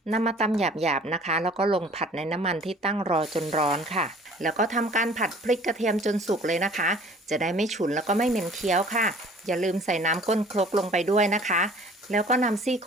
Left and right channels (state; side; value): normal; both; correlation 0.50